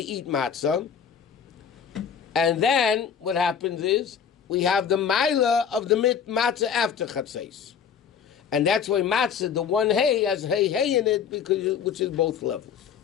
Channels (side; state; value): right; quieter; 7.4 dB